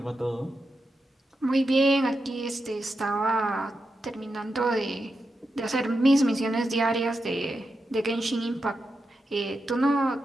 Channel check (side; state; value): both; normal; correlation 0.88